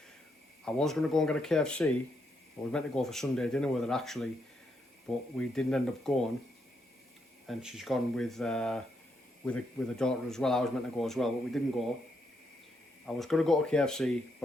I was going to go and get a KFC. I was meant to go for Sunday dinner with her actually, but we didn't end up going, and she's gone with a daughter as well. I was meant to go as well, but we didn't go. I was going to go to KFC,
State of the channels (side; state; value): both; normal; correlation 0.79